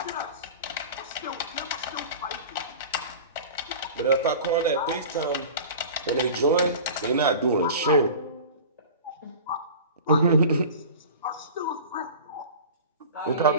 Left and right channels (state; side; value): inverted; both; correlation -0.37